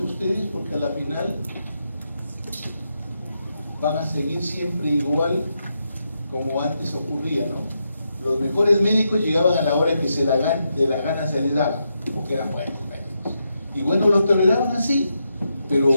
porque a la final van a seguir siempre igual como antes ocurría, ¿no? Los mejores médicos llegaban a la hora que de la gana se les daba, porque eran buenos médicos. Y bueno, los toleraban así, pero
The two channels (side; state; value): both; inverted; correlation -0.83